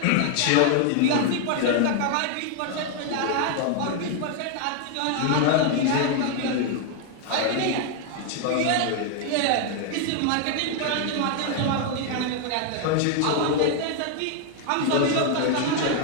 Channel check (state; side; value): different; both; correlation 0.00